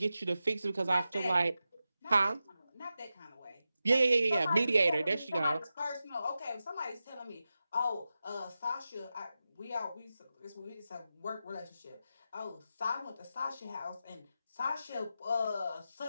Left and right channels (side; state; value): both; inverted; correlation -0.92